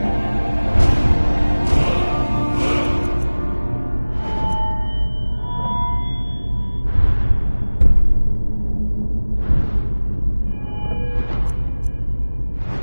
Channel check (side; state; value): both; inverted; correlation -1.00